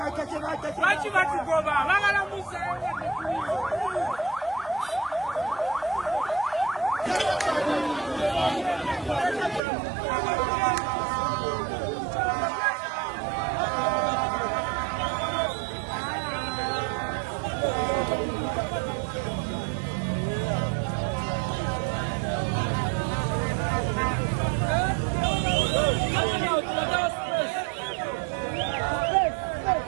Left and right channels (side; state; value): left; drops out; at 9.6 s